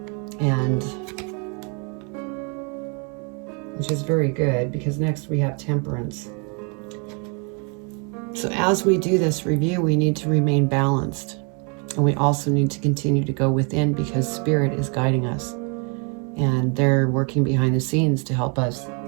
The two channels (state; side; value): quieter; left; 35.6 dB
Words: And which is very good, because next we have Temperance. So as we do this review, we need to remain balanced. And we also need to continue to go within, because Spirit is guiding us. And they're working behind the scenes to help us